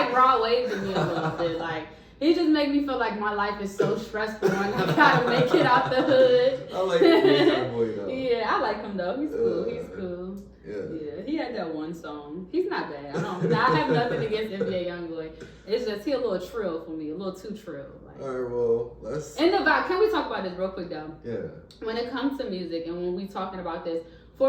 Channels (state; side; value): identical; both; correlation 1.00